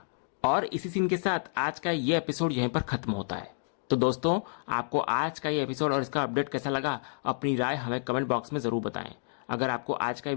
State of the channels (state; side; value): silent; right; digital silence